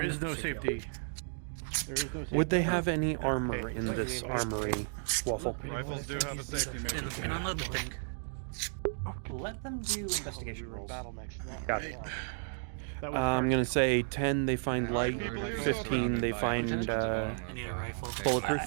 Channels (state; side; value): silent; left; digital silence